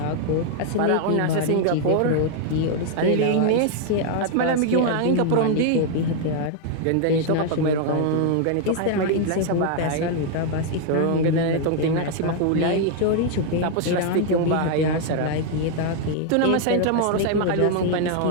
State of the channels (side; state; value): both; different; correlation 0.00